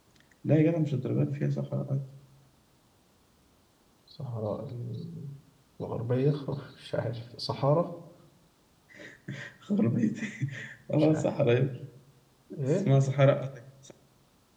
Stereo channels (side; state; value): both; identical; correlation 1.00